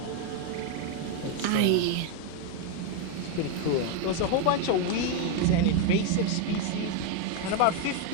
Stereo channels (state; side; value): different; both; correlation 0.02